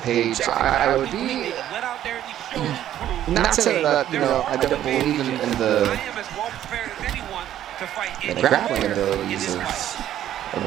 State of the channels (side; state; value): left; quieter; 11.7 dB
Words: I would be went out there and he showed and proved. not saying that, you know, I don't believe in the I am as well prepared as anyone to fight the grappling abilities